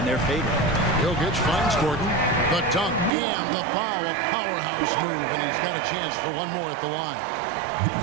their favor. Jokic finds Gordon. The dunk and the foul, a powerhouse move, and he's got a chance for one more at the line.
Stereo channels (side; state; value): left; drops out; at 3.1 s